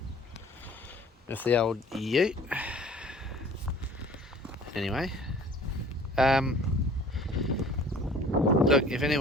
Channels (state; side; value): normal; both; correlation 0.49